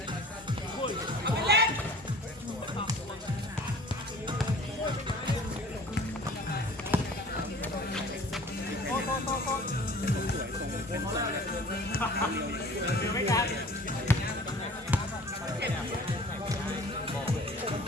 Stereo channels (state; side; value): normal; both; correlation 0.46